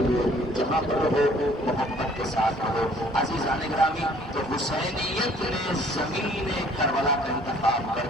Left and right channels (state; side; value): normal; both; correlation 0.57